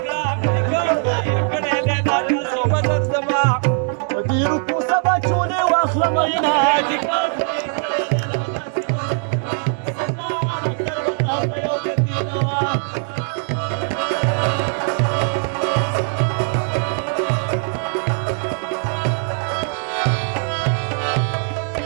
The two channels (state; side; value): silent; left; 56 dB below the other